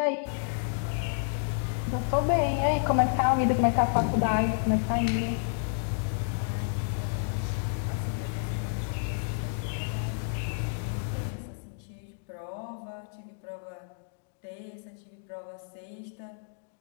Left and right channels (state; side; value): silent; right; digital silence